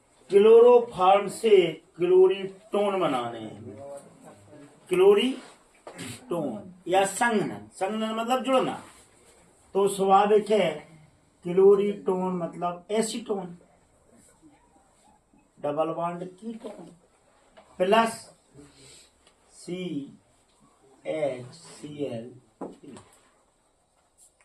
क्लोरोफॉर्म से क्लोरीटोन बनाने हैं, क्लोरीटोन या संघनन। संघनन मतलब जुड़ना, तो स्वाभाविक है क्लोरीटोन मतलब acetone, double bond ketone plus CHCl।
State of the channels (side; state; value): both; identical; correlation 1.00